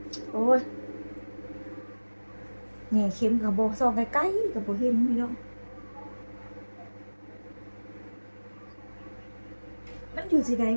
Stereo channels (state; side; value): inverted; both; correlation -1.00